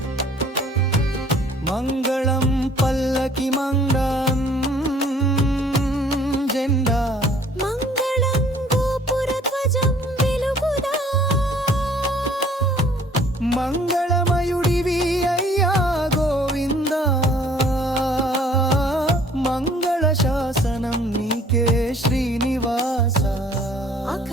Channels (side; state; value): both; normal; correlation 0.56